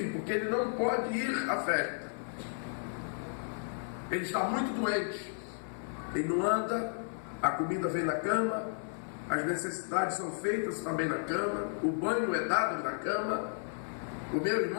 porque ele não pode ir à festa. Ele está muito doente, ele não anda, a comida vem na cama, as necessidades são feitas também na cama, o banho é dado na cama. O meu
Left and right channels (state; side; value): silent; right; 55 dB below the other